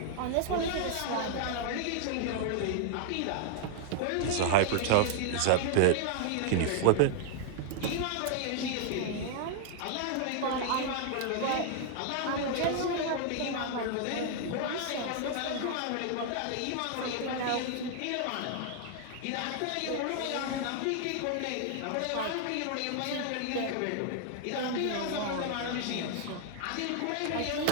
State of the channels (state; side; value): different; both; correlation 0.00